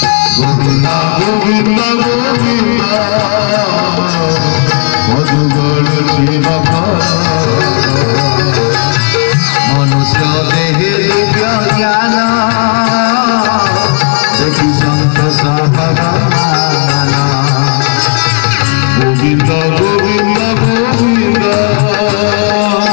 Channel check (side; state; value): right; quieter; 34.9 dB